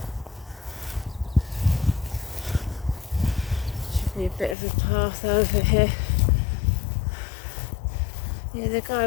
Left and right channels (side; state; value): right; drops out; at 4.5 s